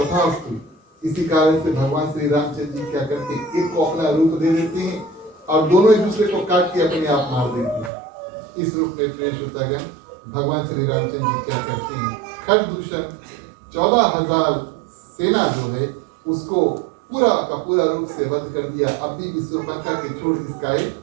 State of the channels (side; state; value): left; drops out; at 7.9 s